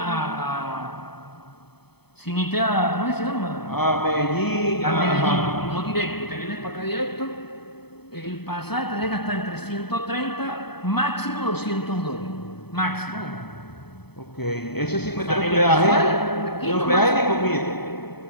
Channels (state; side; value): late; right; 0.97 ms